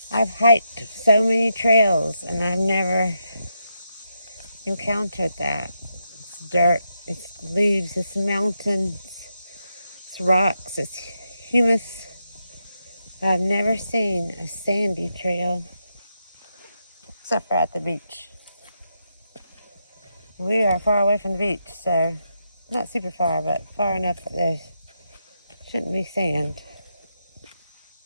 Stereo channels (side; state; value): both; inverted; correlation -0.83